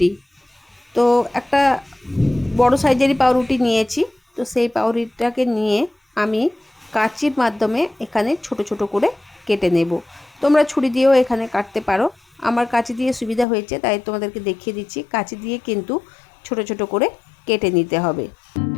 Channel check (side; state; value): right; drops out; at 13.5 s